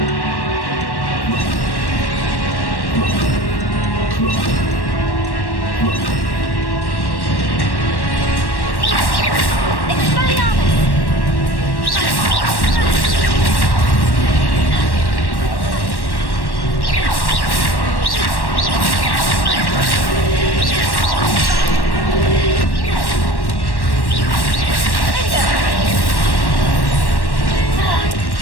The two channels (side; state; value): right; late; 1.1 ms